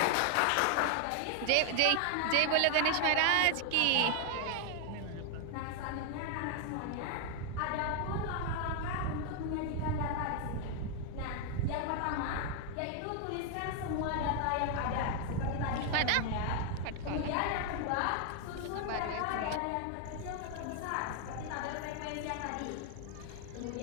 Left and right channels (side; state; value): both; different; correlation 0.00